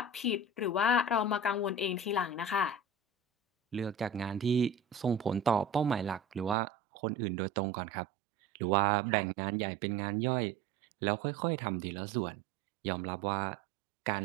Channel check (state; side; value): drops out; left; at 6.6 s